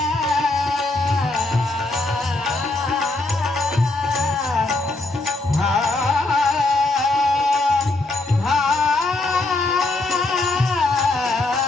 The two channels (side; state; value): right; quieter; 3.0 dB